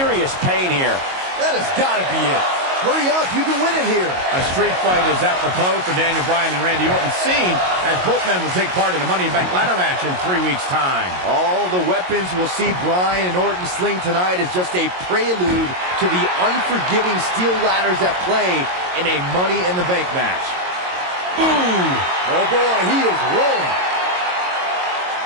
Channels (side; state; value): left; late; 22 ms